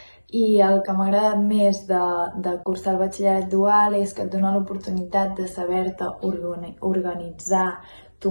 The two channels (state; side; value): inverted; both; correlation -1.00